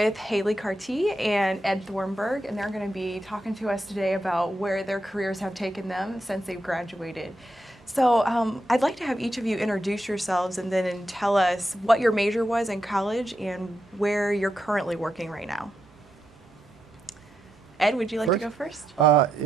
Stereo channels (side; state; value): both; normal; correlation 0.84